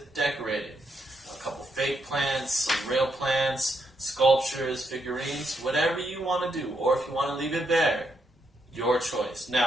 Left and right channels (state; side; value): normal; both; correlation 0.79